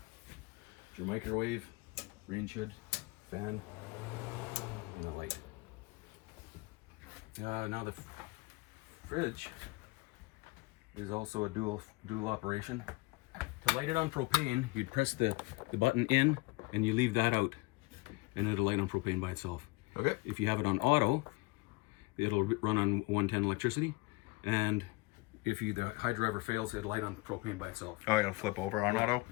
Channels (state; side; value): quieter; right; 23.8 dB